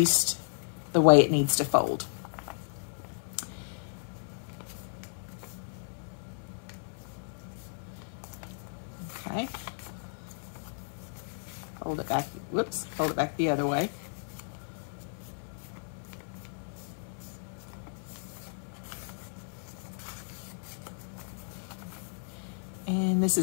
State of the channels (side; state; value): right; silent; digital silence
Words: the way it needs to fold. Okay. Fold it back, whoops, fold it back the other way. And this